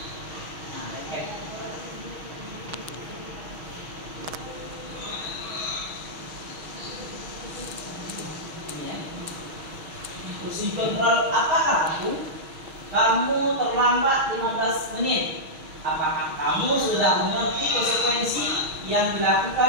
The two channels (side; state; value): left; late; 6.3 ms